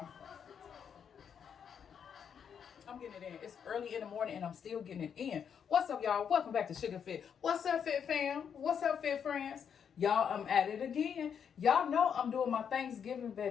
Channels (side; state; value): right; quieter; 7.6 dB